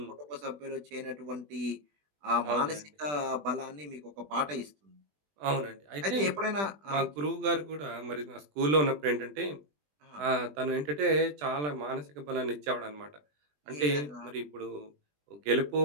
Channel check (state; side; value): late; left; 20 ms